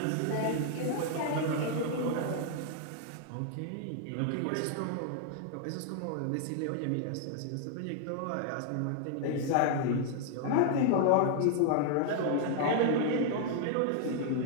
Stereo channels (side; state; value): both; different; correlation 0.00